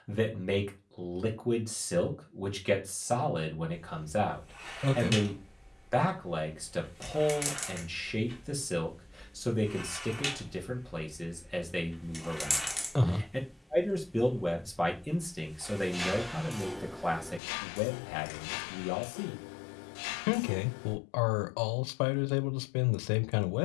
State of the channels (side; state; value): right; drops out; at 17.4 s